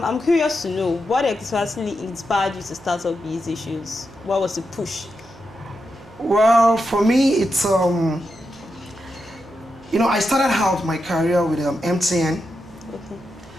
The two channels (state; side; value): noise; right; hum, 23 dB below the sound